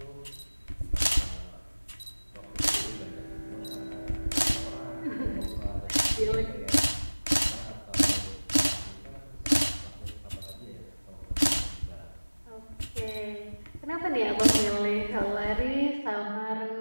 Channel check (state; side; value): inverted; both; correlation -1.00